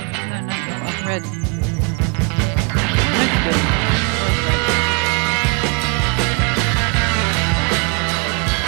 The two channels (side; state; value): left; quieter; 32.3 dB